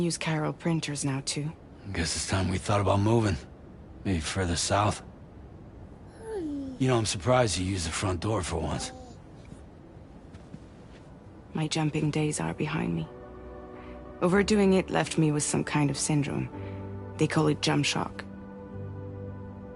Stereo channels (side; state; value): both; identical; correlation 1.00